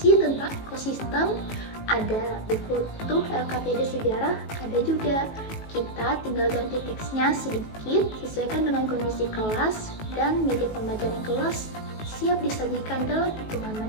tentang ekosistem, ada buku tuh LKPD sejarah, ada juga. Kita tinggal ganti teksnya sedikit, sesuaikan dengan kondisi kelas, dan media pembelajaran kelas siap disajikan dalam hitungan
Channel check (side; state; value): right; late; 18 ms